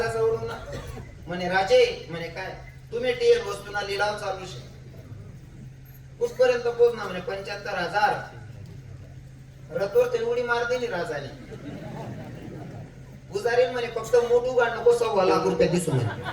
जवळून ना म्हणे, राजे म्हणे काय तुम्ही टीएल वस्तूना लिलाव चालू शे, कुठपर्यंत पोहोचणार म्हणे 75,000. रथवर ते उडी मारते नि राजाने. पुजारी म्हणे, फक्त मोठू गाड नको 1.25 रुपये दिसू म्हणे.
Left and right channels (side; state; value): both; identical; correlation 1.00